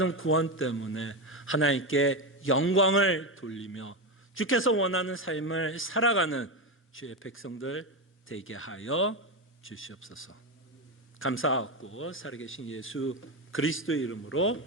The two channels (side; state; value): both; normal; correlation 0.13